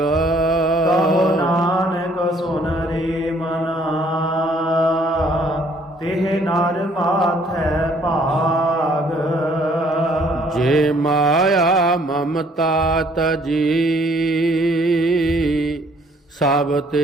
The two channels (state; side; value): normal; both; correlation 0.62